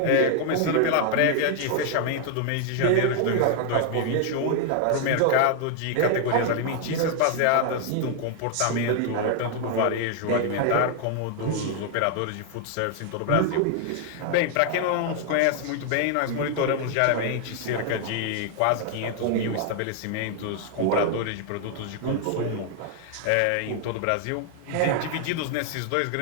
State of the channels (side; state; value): both; different; correlation 0.00